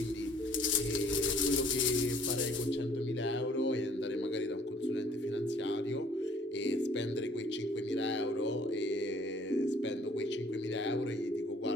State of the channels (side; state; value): both; normal; correlation 0.58